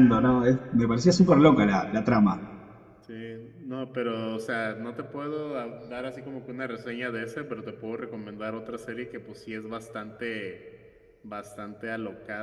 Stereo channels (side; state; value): both; identical; correlation 1.00